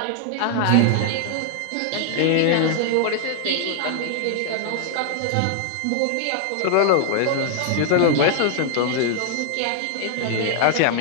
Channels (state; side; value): different; both; correlation 0.00